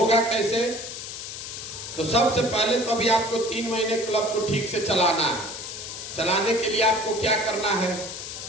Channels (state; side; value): noise; left; hiss, 9 dB below the sound